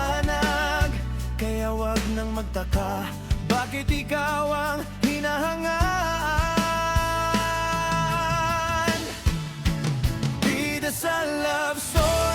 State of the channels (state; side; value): identical; both; correlation 1.00